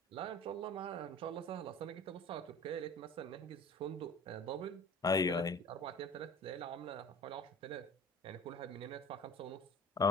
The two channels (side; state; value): both; normal; correlation 0.42